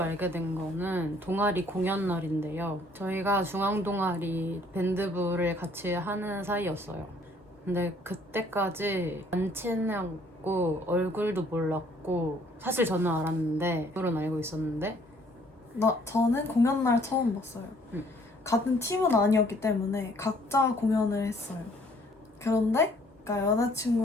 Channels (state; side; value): normal; both; correlation 0.60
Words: 된 거는 동아리 공연 날인데요. 저희가 중앙 동아리 밴드부를 같이 하는 사이였어요. 근데 그때까지 안 친했고 얼굴도 몰랐고 사실 저는 알았는데 얼굴은 알고 있었는데 저는 공연날 처음 봤어요. 응. 같은 팀은 아니었기 때문에 각자 공연을 했어요. 그런데 그러니까